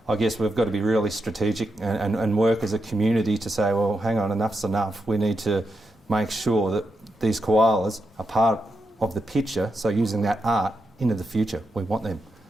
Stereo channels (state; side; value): normal; both; correlation 0.85